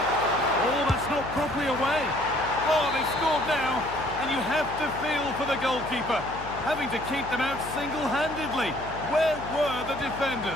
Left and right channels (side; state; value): left; noise; hum, 13 dB below the sound